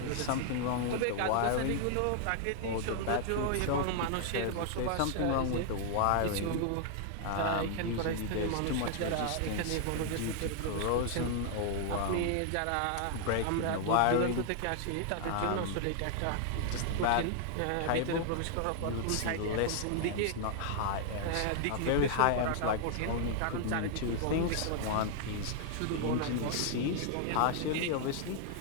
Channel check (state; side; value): different; both; correlation -0.01